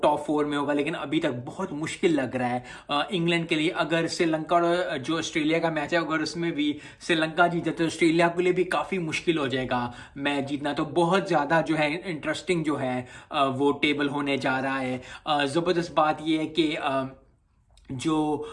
4 में होगा, लेकिन अभी तक बहुत मुश्किल लग रहा है इंग्लैंड के लिए। अगर श्रीलंका और जो ऑस्ट्रेलिया का मैच है, अगर उसमें भी श्रीलंका जीते तो ऑस्ट्रेलिया के लिए भी काफ़ी मुश्किल हो जाएगा मैच जीतना। तो बहुत ज़्यादा जो है इंटरेस्टिंग जो है वो टेबल होने जा रहा है। ज़बरदस्त बात ये है कि जो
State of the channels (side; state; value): both; identical; correlation 1.00